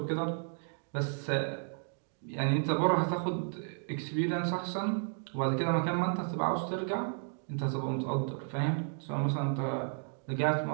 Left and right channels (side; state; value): left; silent; 56 dB below the other